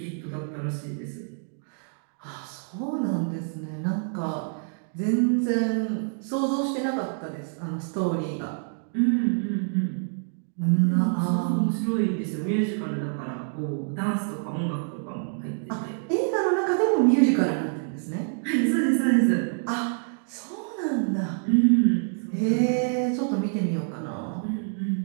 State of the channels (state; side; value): silent; left; 60 dB below the other